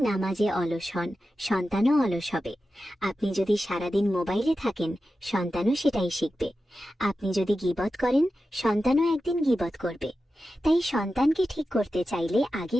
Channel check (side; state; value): both; normal; correlation 0.92